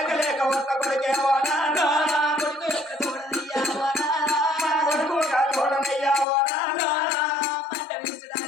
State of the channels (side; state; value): right; drops out; at 6.2 s